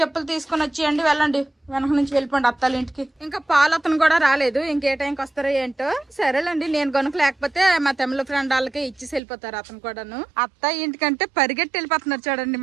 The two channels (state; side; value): drops out; left; at 9.2 s